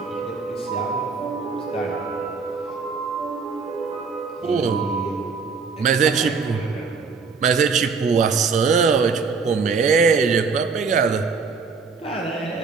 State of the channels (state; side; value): quieter; left; 5.0 dB